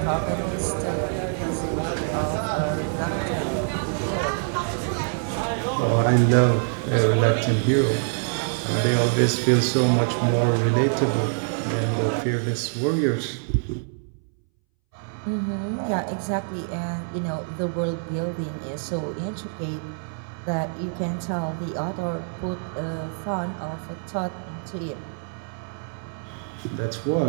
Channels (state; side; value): silent; left; 62 dB below the other